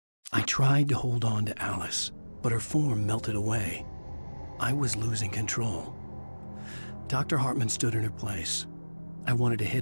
I tried to hold on to Alice, but her form melted away. I was losing control. Dr. Hartman stood in her place. I wanted to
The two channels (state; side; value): inverted; both; correlation -1.00